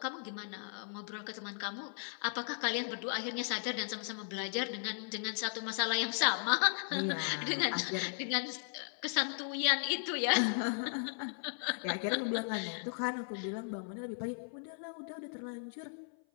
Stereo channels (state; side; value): silent; right; 53 dB below the other